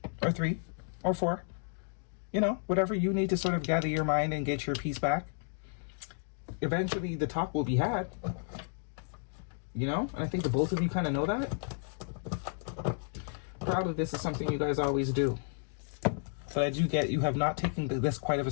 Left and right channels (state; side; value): silent; right; digital silence